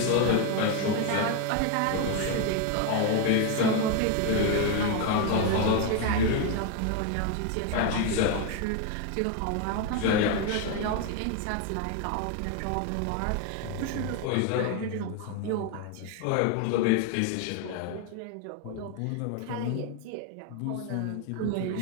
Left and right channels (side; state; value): both; different; correlation 0.01